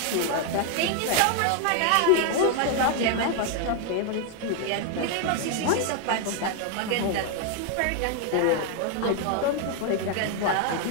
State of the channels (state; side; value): different; both; correlation 0.00